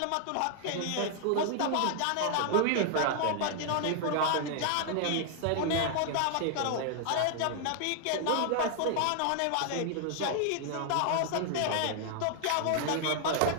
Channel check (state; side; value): different; both; correlation 0.00